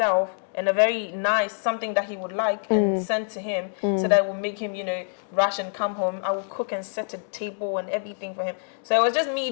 and a very nice, something that he would like, and send to him, so that will make him, you know, rush and come home. I will cook and set a table and everything for him. So it was just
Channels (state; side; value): silent; right; digital silence